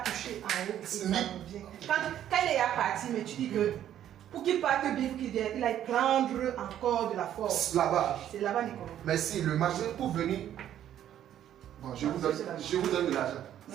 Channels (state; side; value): quieter; left; 11.0 dB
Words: touché en haut. Ça revient. Quand il est parti, mais tu dis que pour qu'il parte bien, il a prendre encore de la force. Là-bas. C'est là-bas Nicolo. Mais si le marché pour venir. Bon, je vous donne de l'argent.